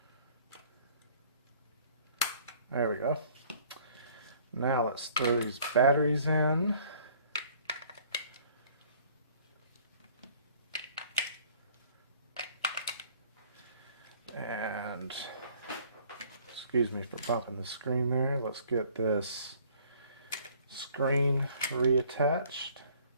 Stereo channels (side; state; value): both; inverted; correlation -0.56